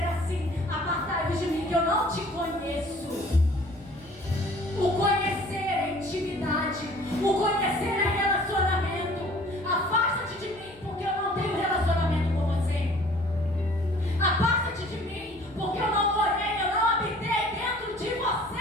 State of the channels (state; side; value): noise; left; hum, 25 dB below the sound